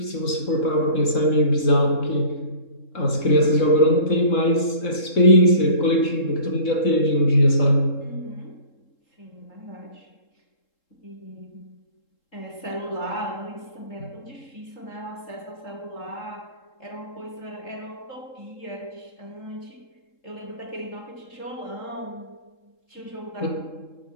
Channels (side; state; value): right; late; 3.7 ms